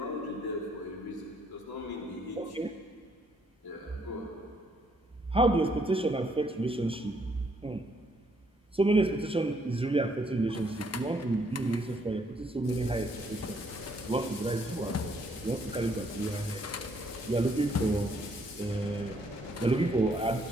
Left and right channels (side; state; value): both; normal; correlation 0.69